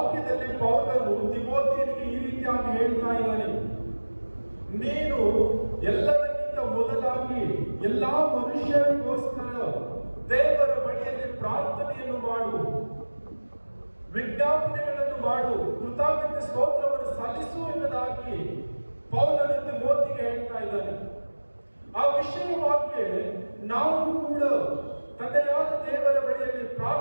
ಪೌಲನು ತಿಮೋಥಿಯನಿಗೆ ಈ ರೀತಿಯಾಗಿ ಹೇಳ್ತಾ ಇದ್ದಾನೆ, ನೀನು ಎಲ್ಲದಕ್ಕಿಂತ ಮೊದಲಾಗಿ ಎಲ್ಲಾ ಮನುಷ್ಯರಿಗೋಸ್ಕರ ದೇವರ ಬಳಿಯಲ್ಲಿ ಪ್ರಾರ್ಥನೆಯನ್ನು ಮಾಡು, ವಿಜ್ಞಾಪನೆಗಳನ್ನು ಮಾಡು, ಕೃತಜ್ಞತೆ ಸ್ತೋತ್ರವನ್ನು ಸಲ್ಲಿಸು ಎಂಬುದಾಗಿ ಪೌಲನು ತಿಮೋಥಿಗೆ ಹೇಳ್ತಾ ಇದ್ದಾನೆ. ಆ ವಿಷಯವಾಗಿ ನಾವು ಕೂಡ ತಂದೆಯಾದ ದೇವರ ಬಳಿಯಲ್ಲಿ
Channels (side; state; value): both; inverted; correlation -1.00